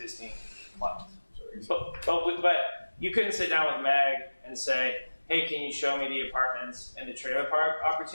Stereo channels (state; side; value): inverted; both; correlation -1.00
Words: clients. But you couldn't sit down with Meg and say, hey, can you show me the apartments and the trailer park